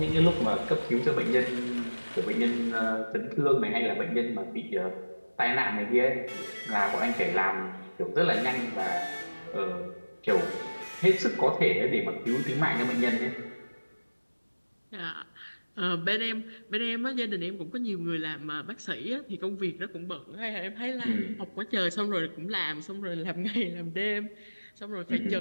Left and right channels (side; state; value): both; inverted; correlation -1.00